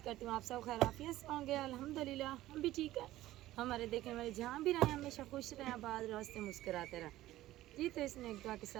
करती हूँ आप सब खैरियत से होंगे। अल्हम्दुलिल्लाह हम भी ठीक है। हमारे देखने वाले जहाँ भी रहें हमेशा खुश रहें, आबाद रहो, हंसते मुस्कुराते रहें जी। तो इसने एक दुआ के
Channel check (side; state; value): left; quieter; 15.4 dB